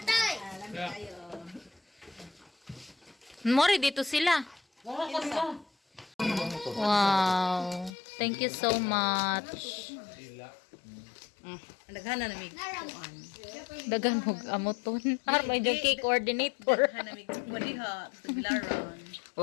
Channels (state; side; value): drops out; right; at 7.9 s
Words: Mori dito sila. Wow. Thank you so much. Naghana na mig. Dagan mo amoton. Har may yung cake coordinator. Naghana mig. Wadiha. Sa bilaran.